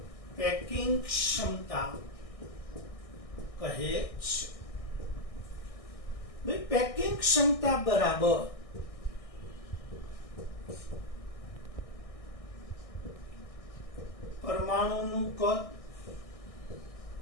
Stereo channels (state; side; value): late; right; 1.6 ms